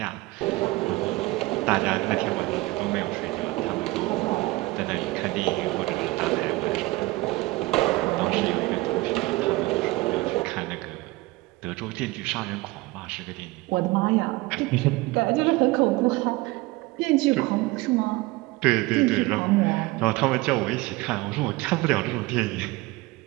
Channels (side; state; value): left; quieter; 21.2 dB